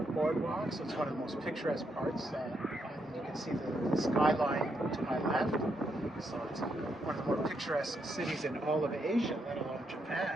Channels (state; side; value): normal; both; correlation 0.79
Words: boardwalk, so it's one of the most picturesque parts. You can see the skyline to my left, so it's one of the more picturesque cities in all of Asia, let alone